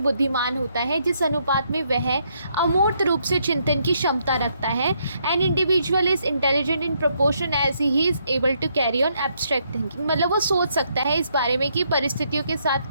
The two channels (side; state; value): both; inverted; correlation -0.74